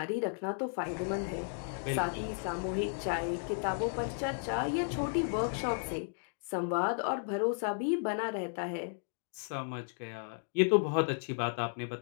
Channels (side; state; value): right; silent; digital silence